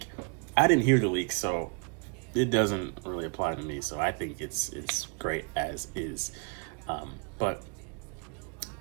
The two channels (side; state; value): left; quieter; 36.1 dB